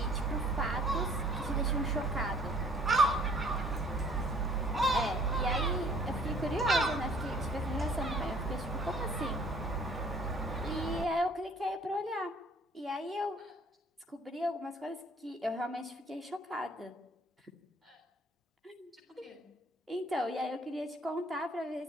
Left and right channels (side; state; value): both; normal; correlation 0.55